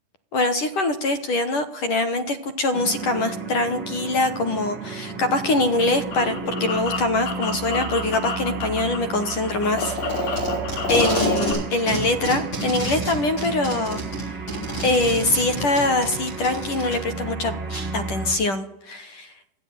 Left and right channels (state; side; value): late; right; 10 ms